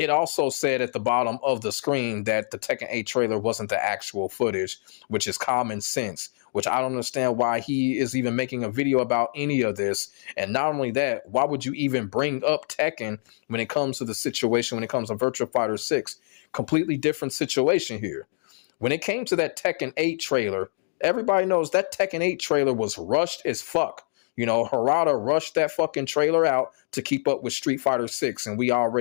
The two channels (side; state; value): right; silent; digital silence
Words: also said at the bottom of the screen that the Tekken 8 trailer wasn't the actual footage, which is common sense, which I don't understand why he is even making a video about any of this. And not only that, why would you even bring up Tekken when it comes to the situation, when it comes to Virtua Fighter 6? Completely different situation here. When it came to that Tekken 8 trailer, everybody knows that Tekken 8 trailer was rushed as fuck. You know, Harada rushed that fucking trailer out to keep up with Street Fighter 6, and we